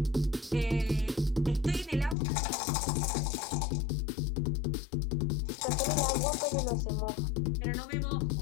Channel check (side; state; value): right; drops out; at 2.1 s